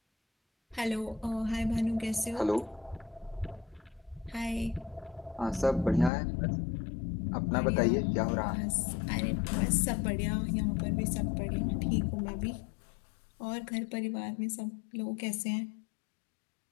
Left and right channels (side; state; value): right; drops out; at 6.1 s